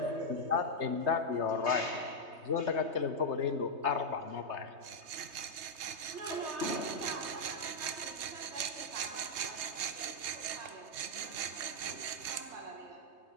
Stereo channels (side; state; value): left; late; 3.2 ms